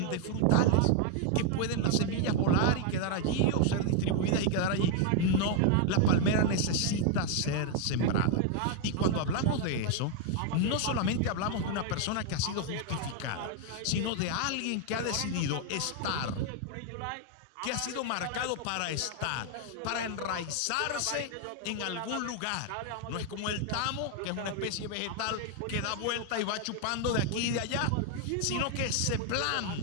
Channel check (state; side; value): different; both; correlation 0.01